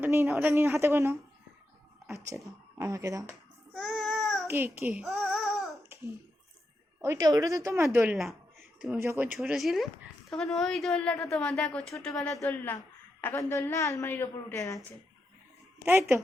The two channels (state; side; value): normal; both; correlation 0.85